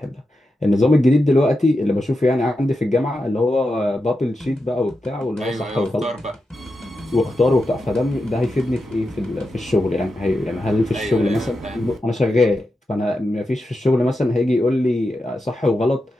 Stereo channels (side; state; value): both; normal; correlation 0.88